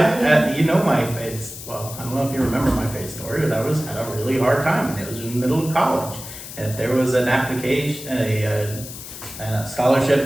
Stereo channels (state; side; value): noise; left; hiss, 12 dB below the sound